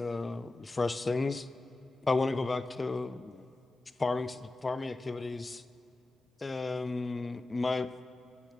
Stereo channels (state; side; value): quieter; right; 3.0 dB